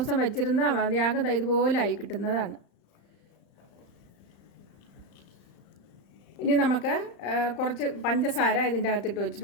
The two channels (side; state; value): right; late; 35 ms